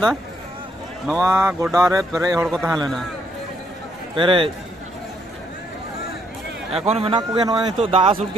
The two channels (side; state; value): both; normal; correlation 0.72